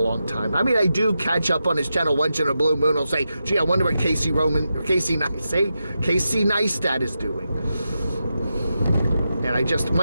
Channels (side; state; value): both; inverted; correlation -0.88